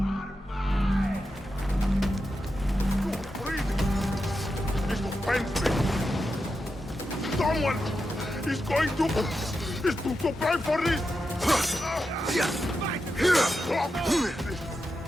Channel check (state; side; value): normal; both; correlation 0.88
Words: This will pains me. Someone is going to pay for this.